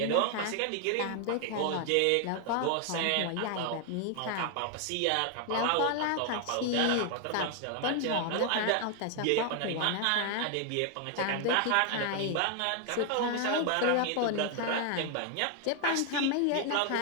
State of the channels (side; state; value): both; different; correlation 0.00